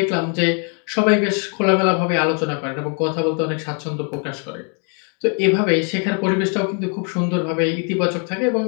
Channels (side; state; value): right; quieter; 39.7 dB